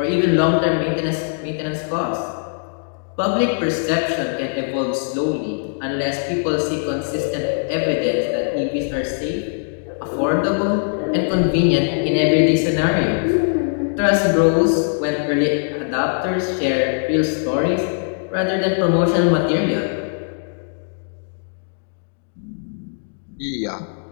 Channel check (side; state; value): right; silent; digital silence